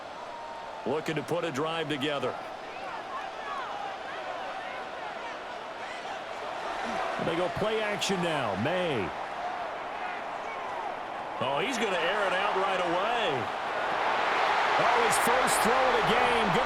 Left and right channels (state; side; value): identical; both; correlation 1.00